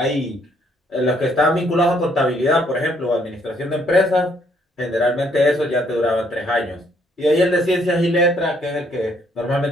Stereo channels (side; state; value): both; normal; correlation 0.68